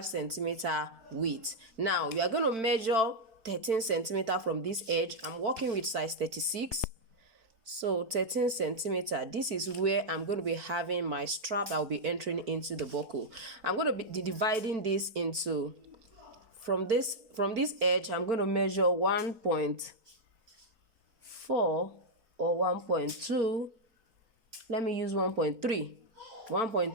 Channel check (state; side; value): late; left; 4.4 ms